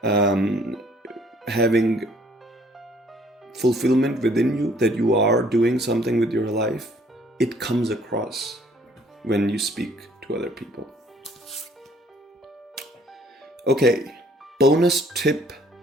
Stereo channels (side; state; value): both; normal; correlation 0.60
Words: Having fulfillment within you that you are doing something with your life, it comes across when you speak to other people. Okay, bonus tip,